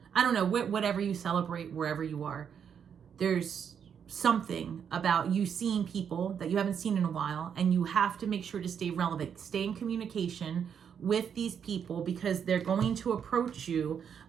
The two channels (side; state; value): left; quieter; 7.7 dB